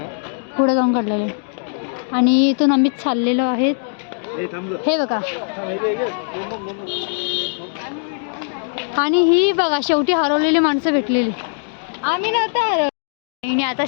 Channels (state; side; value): silent; right; digital silence